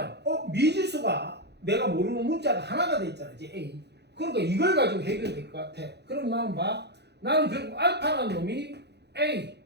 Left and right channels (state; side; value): late; left; 0.49 ms